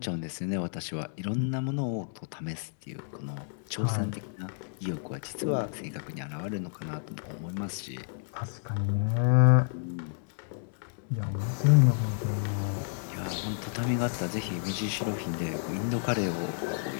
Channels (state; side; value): silent; right; digital silence